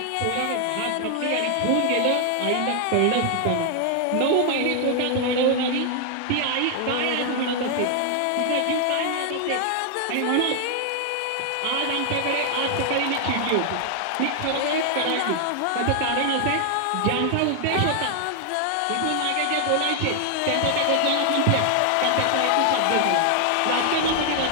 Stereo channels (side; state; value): both; different; correlation 0.00